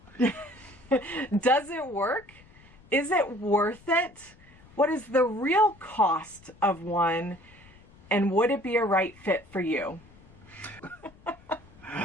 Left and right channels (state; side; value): noise; left; rumble, 25 dB below the sound